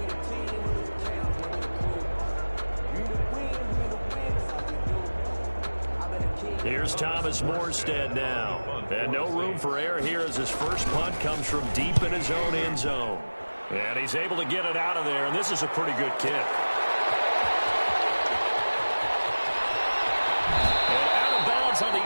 Here's Thomas Morstead now. And no room for error here as his first punt comes from deep in his own end zone. And he's able to get it out of there, and this is a pretty good kick. On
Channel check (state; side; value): inverted; both; correlation -1.00